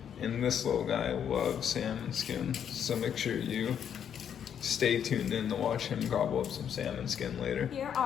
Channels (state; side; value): quieter; right; 8.6 dB